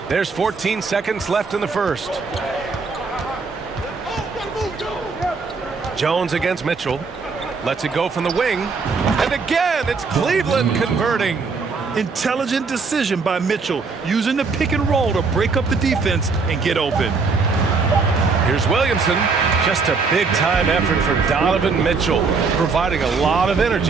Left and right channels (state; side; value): quieter; left; 4.7 dB